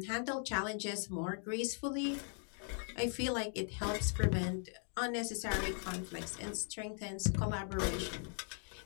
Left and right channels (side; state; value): right; silent; 52 dB below the other